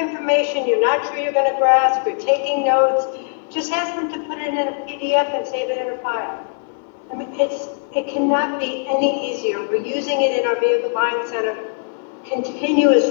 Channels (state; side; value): silent; right; 60 dB below the other